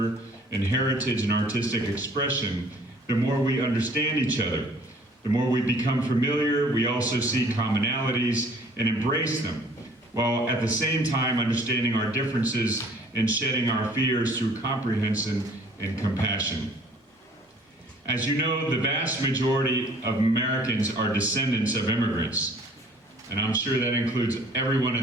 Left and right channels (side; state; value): both; normal; correlation 0.55